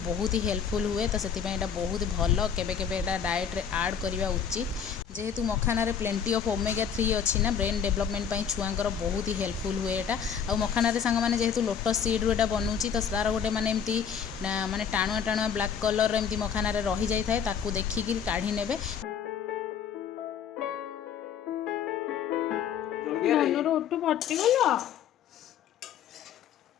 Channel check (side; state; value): right; quieter; 7.6 dB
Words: बहुत ही हेल्पफुल हुए। तो से बहुत भल केबे केबे डाएट रे ऐड करवा उचित जेहेतु मखाना रे प्लेंटी ऑफ ओमेगा 3 अच्छी ना ब्रेन डेवलपमेंट छुआंकर बहुत ही हेल्पफुल हुए। एटा आ मखाना रे सांग माने जेहेतु लोटस सीड रो एटा बनउची तो तार गोटे माने एमती माने टाणुआ टाणुआ ब्लैक कलर एमती मखाना रे रही जाय थाए ताकू देखिकी काढी नेबे। धनुर ओटू फाटीगला